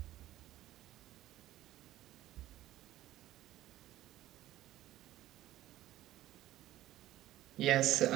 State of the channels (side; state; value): left; quieter; 14.7 dB